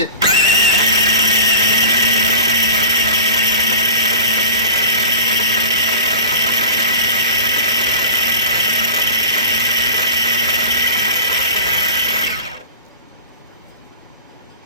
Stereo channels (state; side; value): inverted; both; correlation -0.34